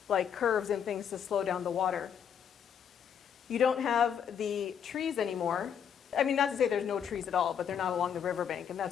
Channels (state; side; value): quieter; right; 8.1 dB